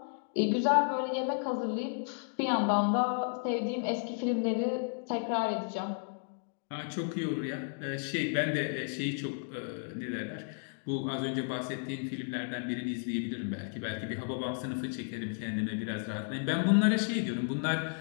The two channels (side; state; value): right; silent; 56 dB below the other